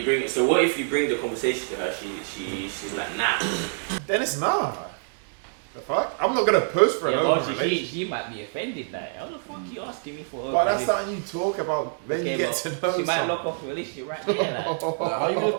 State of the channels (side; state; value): left; silent; digital silence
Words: bring it. So what if you bring the conversation to her? She's like, nah. Then it's nah. The fuck? I'm not gonna post for an open relationship. She might be offended. Like, how the fuck you asking me for? But that's something you talk about when you get to know She might someone. lock off the relationship right there. Like. Like, how you gonna